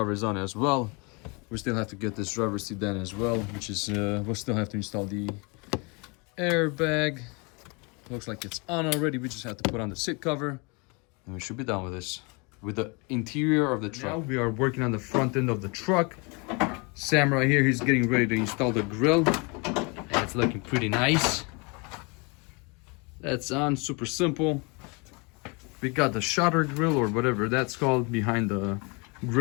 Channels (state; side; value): quieter; right; 30.5 dB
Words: is on as well. We still have to get this driver's seat done as well, which is we'll still have to install the airbag. Looks like it's on already. We just have to put on the seat cover, and we should be done with this. With the interior of the truck. Now we are working on the front end of the truck. Sam right here, he's getting ready to install the grill. And it's looking pretty nice. That's on, super simple. We got the shutter grill, or whatever that's called, behind the